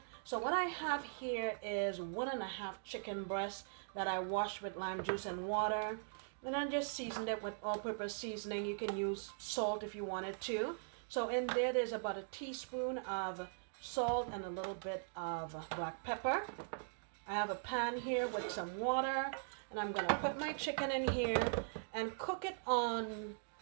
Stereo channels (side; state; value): left; silent; digital silence